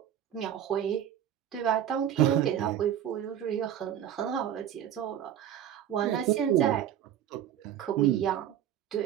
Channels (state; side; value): quieter; left; 10.4 dB